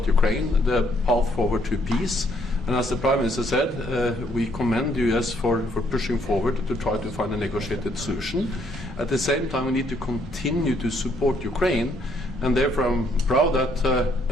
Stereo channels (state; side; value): normal; both; correlation 0.69